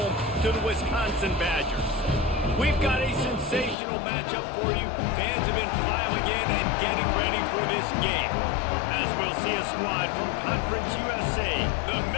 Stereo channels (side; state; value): right; drops out; at 3.8 s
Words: to the Wisconsin Badgers. We've got a sensational matchup for you. Fans have been filing in and getting ready for this game, as we'll see a squad from Conference USA, the